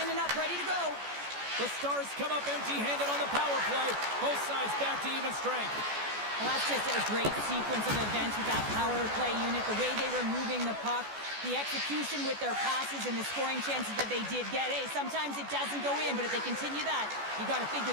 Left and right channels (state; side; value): late; left; 14 ms